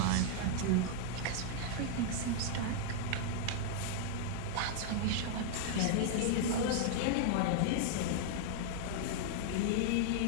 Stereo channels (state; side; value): different; both; correlation -0.01